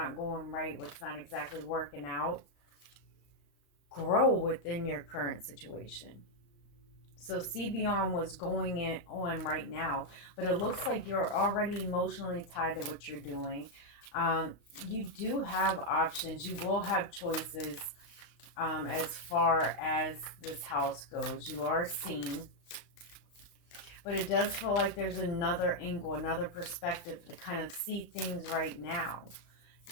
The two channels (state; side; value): late; right; 35 ms